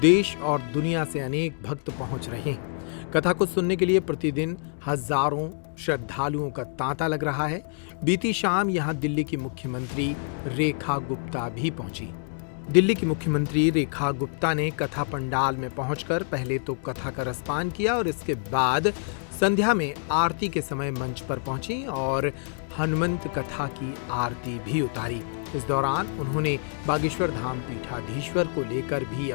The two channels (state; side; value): silent; right; digital silence